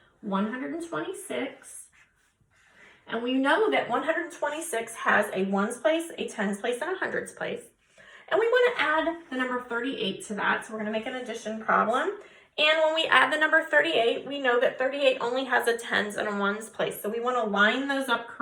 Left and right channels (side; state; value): both; identical; correlation 1.00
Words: 126, and we know that 126 has a ones place, a tens place, and a hundreds place. And we want to add the number 38 to that, so we're going to make an addition problem. And when we add the number 38, we know that 38 only has a tens and a ones place, so we want to line those up